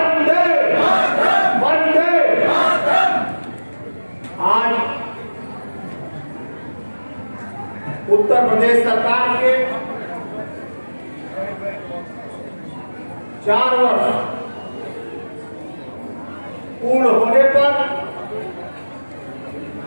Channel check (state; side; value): inverted; both; correlation -1.00